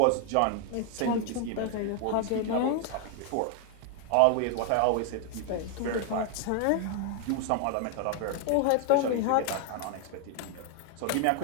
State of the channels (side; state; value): both; different; correlation 0.00